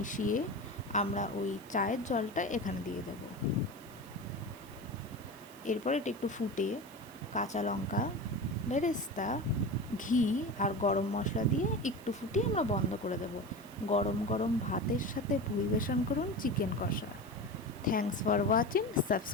আমরা ওই চায়ের জলটা এখানে দিয়ে দেব। এরপর এটা একটু ফুটে কাঁচা লঙ্কা, বেরেস্তা, ঘি আর গরম মশলা দিয়ে একটু ফুটিয়ে আমরা বন্ধ করে দেব। গরম গরম ভাতের সাথে পরিবেশন করুন চিকেন কষা। Thanks for watching,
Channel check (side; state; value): right; noise; hiss, 22 dB below the sound